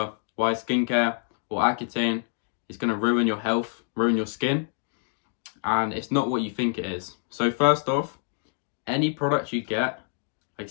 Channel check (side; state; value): right; silent; 60 dB below the other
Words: why skincare or Accutane is going to ruin your health, ruin your skin, and it's not what you think it is. So first off, any product you get, like